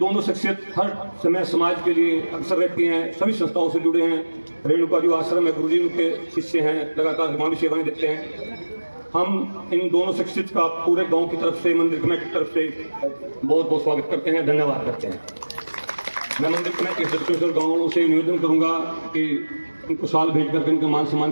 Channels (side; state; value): both; inverted; correlation -1.00